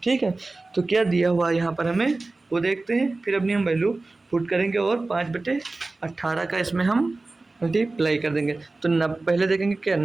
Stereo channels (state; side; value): quieter; left; 3.3 dB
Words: है, तो क्या दिया हुआ यहाँ पर हमें वो देखते हैं, फिर अपनी हम वैल्यू पुट करेंगे और 5/18 का इसमें हम मल्टीप्लाई कर देंगे। तो पहले देखेंगे क्या